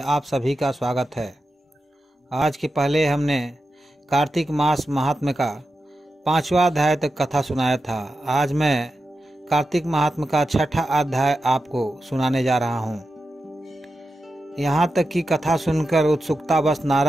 आप सभी का स्वागत है। आज के पहले हमने कार्तिक मास महात्म्य का 5वां अध्याय तक कथा सुनाया था। आज मैं कार्तिक महात्म्य का 6ठा अध्याय आपको सुनाने जा रहा हूँ। यहाँ तक की कथा सुनकर उत्सुकतावश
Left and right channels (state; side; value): normal; both; correlation 0.90